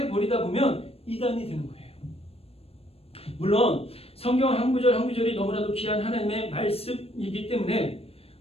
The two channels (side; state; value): right; late; 0.28 ms